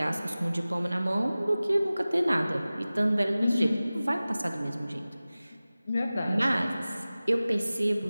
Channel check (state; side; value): inverted; both; correlation -0.97